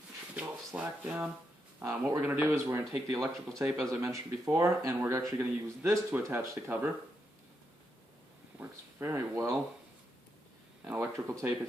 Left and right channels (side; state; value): both; normal; correlation 0.82